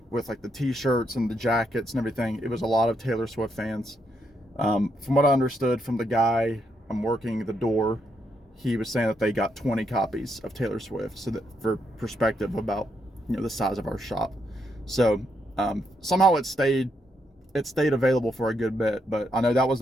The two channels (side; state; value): both; normal; correlation 0.78